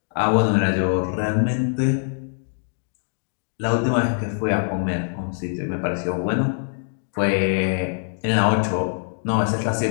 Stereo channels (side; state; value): right; silent; 63 dB below the other